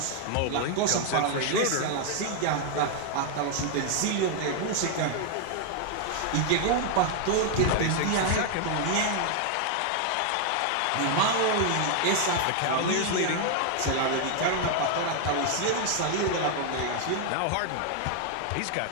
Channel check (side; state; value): both; different; correlation 0.00